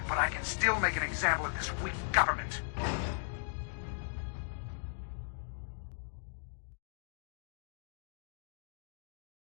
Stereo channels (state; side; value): silent; right; digital silence